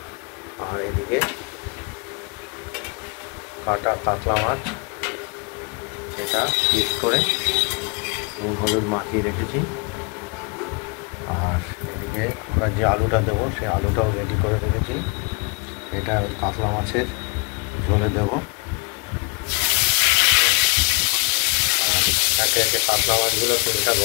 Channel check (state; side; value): quieter; right; 31.2 dB